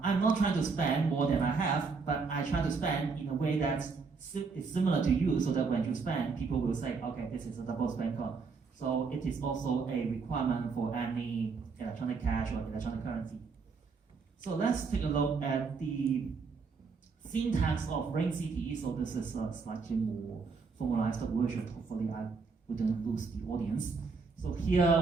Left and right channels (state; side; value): quieter; left; 4.8 dB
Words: not trying to spend more than I have, but I try to spend in a way that is similar to you so that when you spend, people will say, okay, this is a double spend coin. So it is also a requirement for any electronic cash or electronic currency. So let's take a look at the syntax of RingCT. So this is a slightly more formalized version. Hopefully I wouldn't lose the audience. So